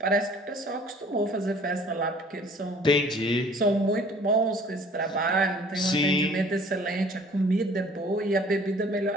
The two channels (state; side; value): normal; both; correlation 0.53